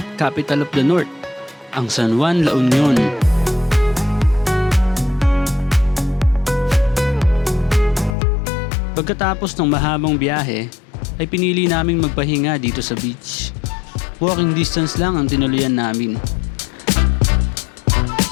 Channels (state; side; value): drops out; right; at 8.2 s